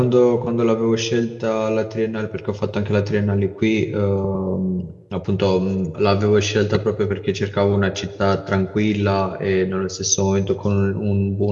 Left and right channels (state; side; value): identical; both; correlation 1.00